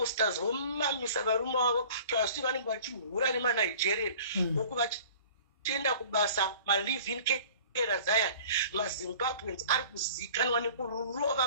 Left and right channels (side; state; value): both; inverted; correlation -0.46